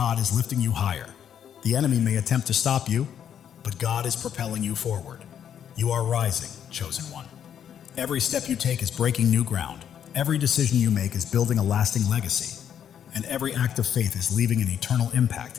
is lifting you higher. The enemy may attempt to stop you, but God is propelling you forward. You are rising, chosen one. Every step you take is breaking new ground. Every decision you make is building a lasting legacy. And every act of faith is leaving an eternal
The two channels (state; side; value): quieter; right; 9.1 dB